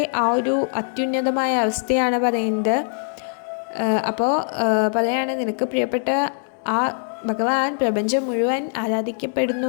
ആ ഒരു അത്യുന്നതമായ അവസ്ഥയാണ് പറയുന്നത്. അപ്പോൾ പറയാണ്, നിനക്ക് പ്രിയപ്പെട്ട ആ ഭഗവാൻ പ്രപഞ്ചം മുഴുവൻ ആരാധിക്കപ്പെടുന്നു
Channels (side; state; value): right; silent; digital silence